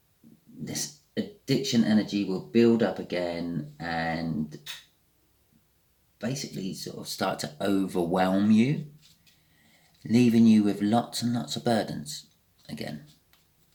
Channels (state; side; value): identical; both; correlation 1.00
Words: this addiction energy will build up again and basically sort of start to overwhelm you, leaving you with lots and lots of burdens again.